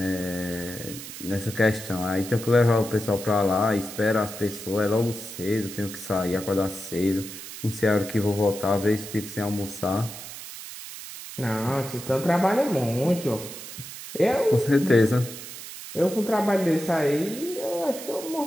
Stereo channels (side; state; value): right; noise; hiss, 12 dB below the sound